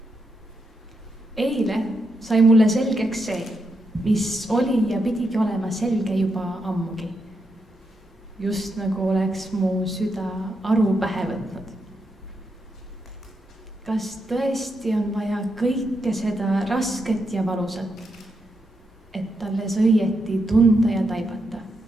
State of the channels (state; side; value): normal; both; correlation 0.82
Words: Eile sai mulle selgeks see, mis oli ja pidigi olema selge juba ammugi. Just nagu oleks mu süda aru pähe võtnud. Kas tõesti on vaja kõike seda rasket ja valusat, et alles õieti tunda ja taibata,